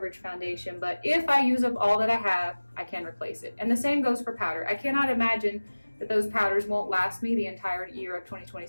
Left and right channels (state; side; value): inverted; both; correlation -1.00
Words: foundation, but if I use up all that I have, I can replace it. And the same goes for powder. I cannot imagine that those powders won't last me the entire year of